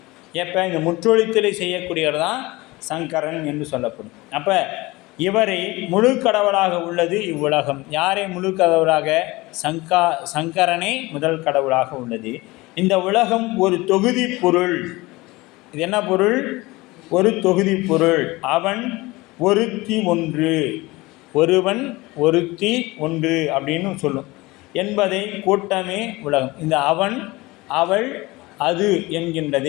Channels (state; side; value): quieter; right; 21.5 dB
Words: எப்போ இந்த முற்றொழித்தலை செய்யக்கூடியவர் தான் சங்கரன் என்று சொல்லப்படும். அப்போ இவரை முழு கடவுளாக உள்ளது இவ்வுலகம். யாரை முழு கடவுளாக? சங்கரனே முதல் கடவுளாக உள்ளது. இந்த உலகம் ஒரு தொகுதி பொருள். இது என்ன பொருள்? ஒரு தொகுதி பொருள். அவன் ஒருத்தி ஒன்று, ஒருவன் ஒருத்தி ஒன்று அப்படின்னு சொல்லும் என்பதை கூட்டமே உலகம். இந்த அவன், அவள், அது